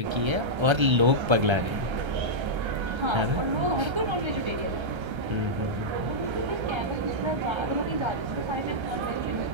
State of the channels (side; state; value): left; late; 1.3 ms